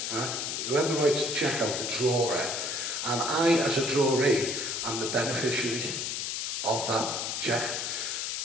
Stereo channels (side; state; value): left; noise; hiss, 2 dB below the sound